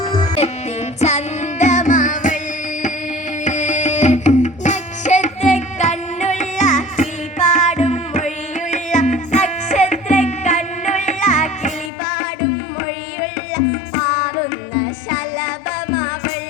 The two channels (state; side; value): drops out; right; at 11.9 s